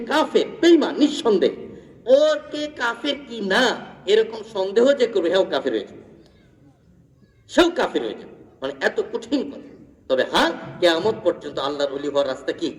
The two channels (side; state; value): both; identical; correlation 1.00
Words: কাফের, বেঈমান, নিঃসন্দেহ। ওর কে কাফের কি না এরকম সন্দেহ যে করবে, হেও কাফের হয়েছে, সেও কাফের হয়েছে, মানে এত কঠিন কথা। তবে হ্যাঁ, কিয়ামত পর্যন্ত আল্লাহর ওলি হওয়ার রাস্তা কি?